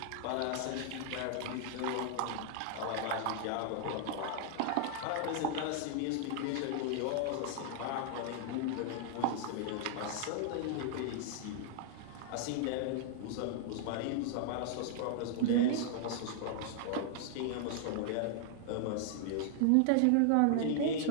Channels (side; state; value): both; different; correlation -0.01